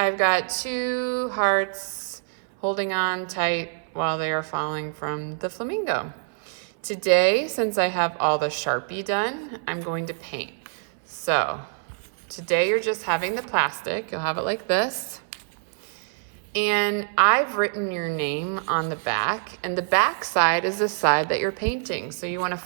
got two hearts holding on tight while they are falling from the Flamingo. Today, since I have all the Sharpie done, I'm going to paint. So today you're just having the plastic. You'll have it like this. And I've written your name on the back, and the back side is the side that you're painting. So you want to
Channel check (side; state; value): left; silent; 59 dB below the other